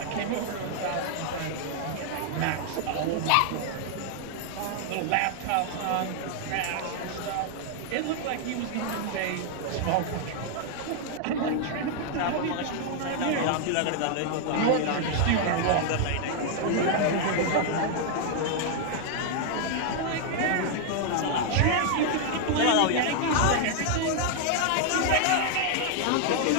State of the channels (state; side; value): different; both; correlation 0.00